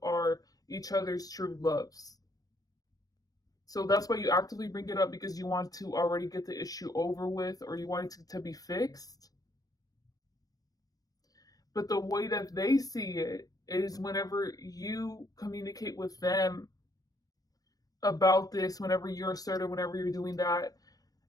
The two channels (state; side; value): late; right; 0.18 ms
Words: are each other's true loves. So that's why you actively bring it up, because you want to already get the issue over with, or you want it to be fixed. But the way that they see it is whenever you communicate with them about this, whenever you're assertive, whenever you're doing that,